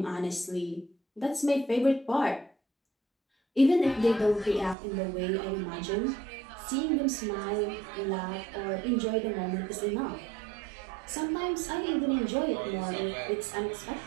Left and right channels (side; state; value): left; drops out; at 4.8 s